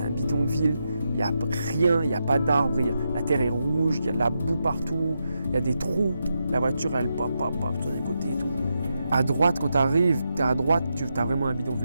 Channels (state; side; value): inverted; both; correlation -0.85